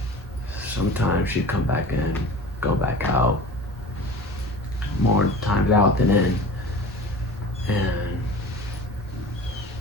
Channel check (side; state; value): both; normal; correlation 0.38